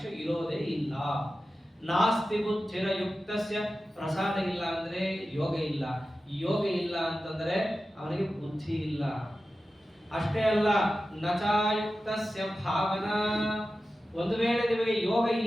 ಇರೋದೇ ಇಲ್ಲ. ನಾಸ್ತಿ ಬುದ್ಧಿರ ಯುಕ್ತಸ್ಯ. ಪ್ರಸಾದ ಇಲ್ಲ ಅಂದ್ರೆ ಯೋಗ ಇಲ್ಲ. ಯೋಗ ಇಲ್ಲ ಅಂತಂದ್ರೆ ಅವನಿಗೆ ಬುದ್ಧಿ ಇಲ್ಲ. ಅಷ್ಟೇ ಅಲ್ಲ, ನಚಾಯುಕ್ತಸ್ಯ ಭಾವನಾ. ಒಂದು ವೇಳೆ ನಿಮಗೆ ಯೋಗ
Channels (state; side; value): normal; both; correlation 0.94